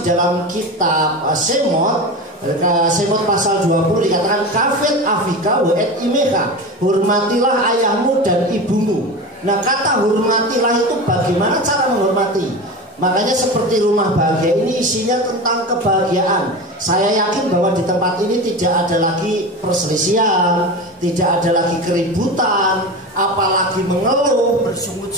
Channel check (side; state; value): both; normal; correlation 0.27